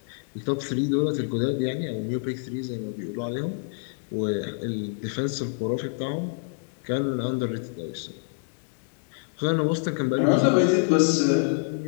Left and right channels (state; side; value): silent; right; digital silence